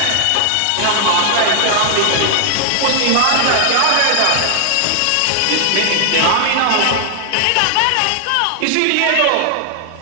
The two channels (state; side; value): different; both; correlation 0.00